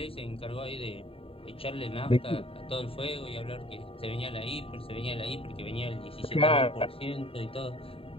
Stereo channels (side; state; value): right; late; 0.27 ms